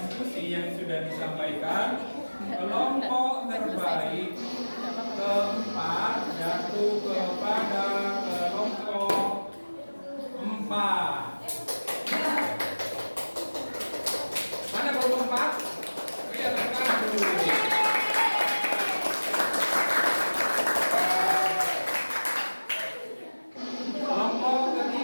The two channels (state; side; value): inverted; both; correlation -1.00